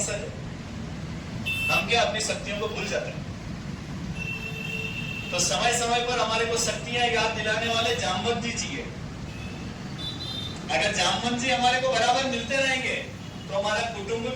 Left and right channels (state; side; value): identical; both; correlation 1.00